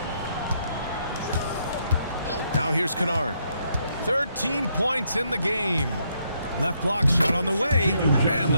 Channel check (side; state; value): both; inverted; correlation -0.75